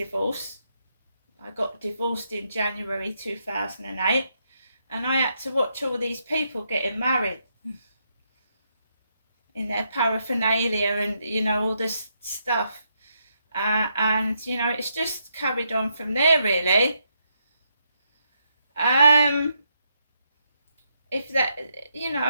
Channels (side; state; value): both; inverted; correlation -0.79